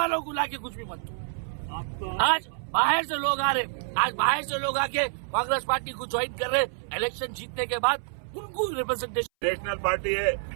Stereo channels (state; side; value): silent; left; 60 dB below the other